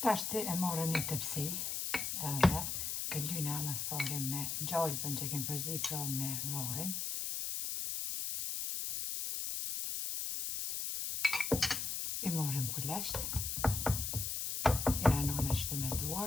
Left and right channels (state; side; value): noise; left; hiss, 2 dB below the sound